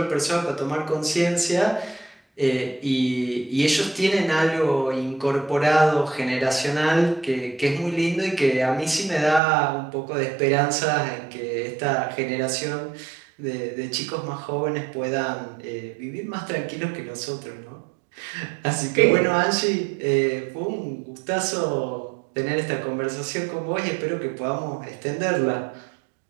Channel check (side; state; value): left; drops out; at 9.4 s